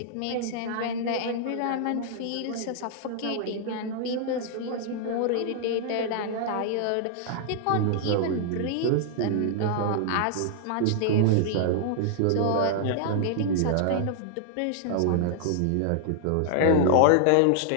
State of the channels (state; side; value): different; both; correlation -0.01